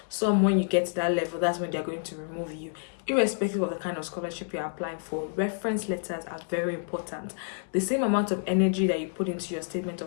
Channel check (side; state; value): right; silent; digital silence